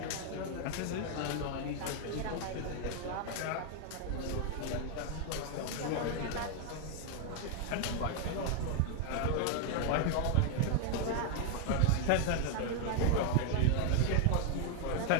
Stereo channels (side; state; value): both; different; correlation 0.00